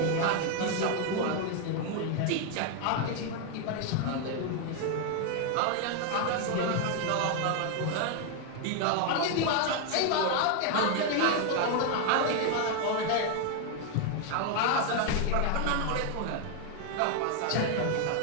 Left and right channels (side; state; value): both; different; correlation 0.01